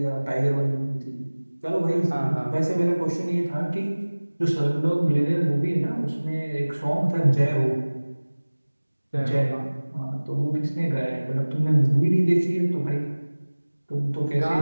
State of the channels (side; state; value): both; inverted; correlation -1.00